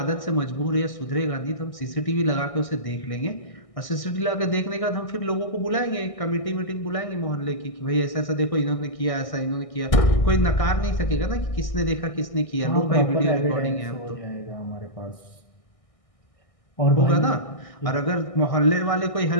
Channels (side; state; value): right; late; 1.6 ms